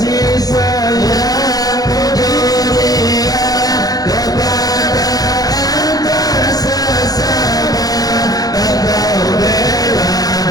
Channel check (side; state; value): right; late; 0.18 ms